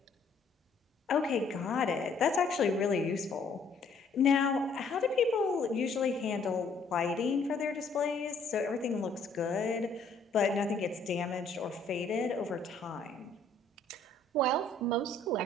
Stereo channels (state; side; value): quieter; right; 3.5 dB